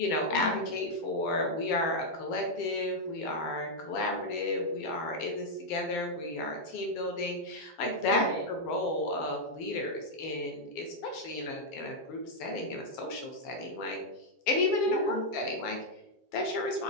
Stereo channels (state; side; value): late; right; 7.3 ms